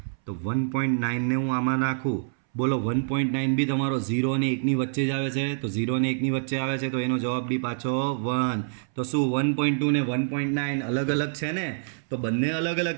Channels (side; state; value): left; silent; 61 dB below the other